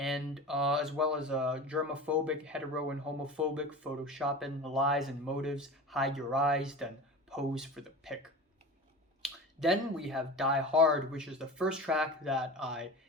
as well as germophobic, hetero and homophobic, photoshopping, lies and motives, hide your eyes, then pose for the pic. Then we have Die Hard, which is the first track that I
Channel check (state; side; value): normal; both; correlation 0.32